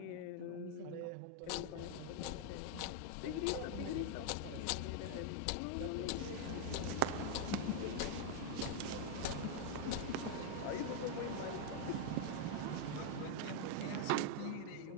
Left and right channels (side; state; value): both; different; correlation 0.00